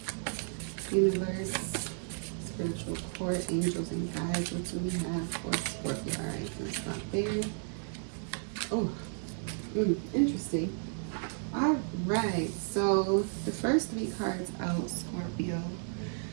universe, spiritual court, angels and guides, what do we have for Scorpio? All right, let's stop there. Oh, interesting. All right, so the first 3 cards out, Scorpio,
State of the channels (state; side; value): silent; left; 56 dB below the other